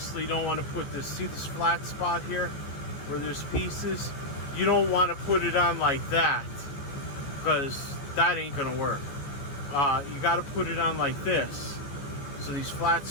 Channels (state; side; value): late; right; 15 ms